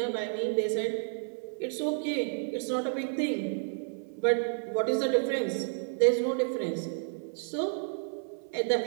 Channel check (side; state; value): left; silent; 57 dB below the other